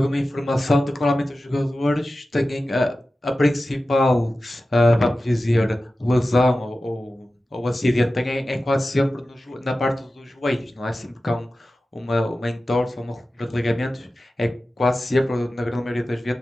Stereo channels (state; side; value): normal; both; correlation 0.94